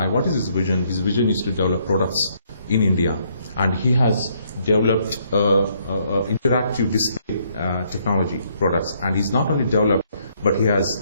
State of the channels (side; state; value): both; inverted; correlation -0.69